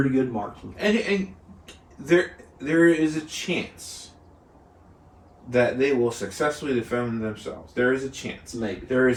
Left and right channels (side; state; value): both; identical; correlation 1.00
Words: good marksman. And there is a chance that they will successfully defend themselves. There is a chance. Maybe. There